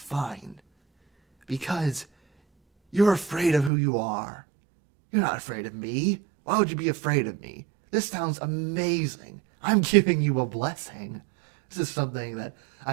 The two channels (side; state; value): left; drops out; at 3.7 s